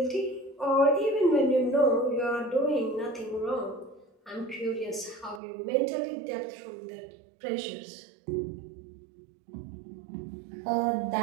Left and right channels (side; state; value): left; drops out; at 5.4 s